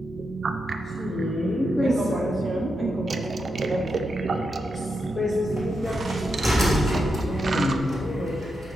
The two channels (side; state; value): both; normal; correlation 0.85